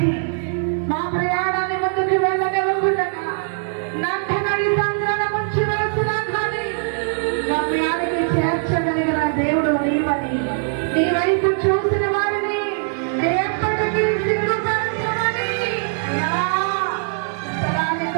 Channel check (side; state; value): left; silent; 65 dB below the other